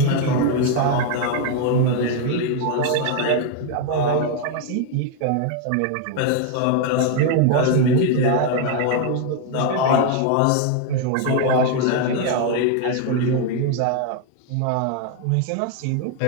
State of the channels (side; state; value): both; different; correlation 0.01